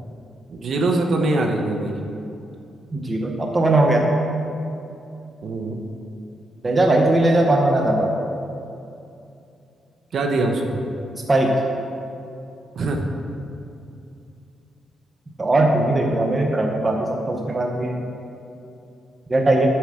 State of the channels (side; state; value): both; normal; correlation 0.83